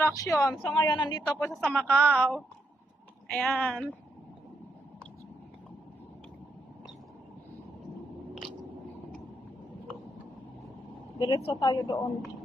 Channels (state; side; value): normal; both; correlation 0.79